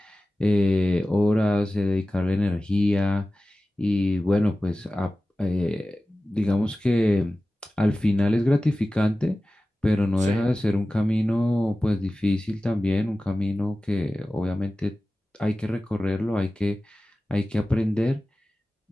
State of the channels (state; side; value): normal; both; correlation 0.96